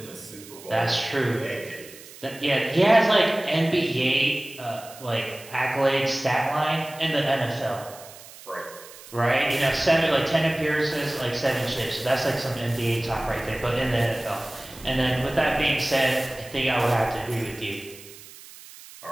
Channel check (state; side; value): noise; right; hiss, 18 dB below the sound